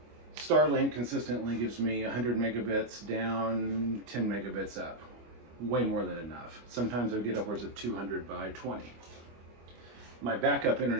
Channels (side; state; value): left; late; 25 ms